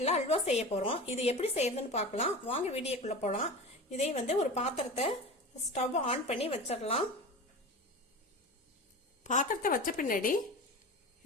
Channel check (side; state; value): both; normal; correlation 0.31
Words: அல்வா செய்ய போகிறோம். இது எப்படி செய்யறதுன்னு பார்க்கலாம். வாங்க வீடியோக்குள்ளே போகலாம். இதே ஒரு பாத்திரத்தை ஸ்டவ் ஆன் பண்ணி வச்சிடலாம். பாத்திரத்தை வச்ச பின்னாடி